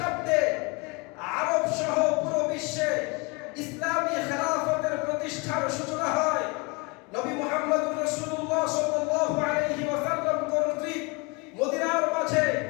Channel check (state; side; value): quieter; right; 28.8 dB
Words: আরব সহ পুরো বিশ্বে ইসলামী খেলাফতের প্রতিষ্ঠার সূচনা হয়। নবী মুহাম্মদুর রাসূলুল্লাহ সাল্লাল্লাহু আলাইহি ওয়াসাল্লাম কর্তৃক মদিনার মাঝে